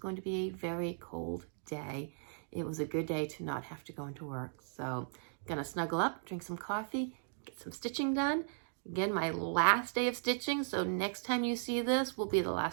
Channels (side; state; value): left; silent; digital silence